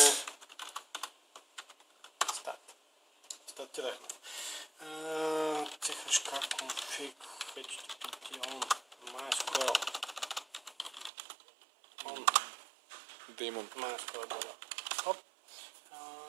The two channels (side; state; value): left; drops out; at 11.1 s